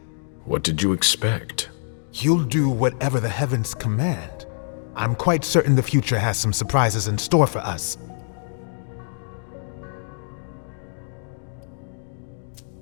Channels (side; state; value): right; silent; digital silence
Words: What did you expect? You'll do whatever the heavens command. I'm quite certain the future has some surprises in store for us.